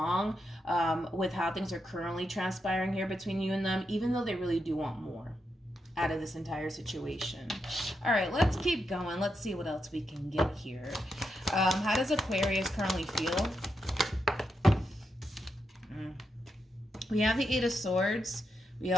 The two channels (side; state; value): both; normal; correlation 0.84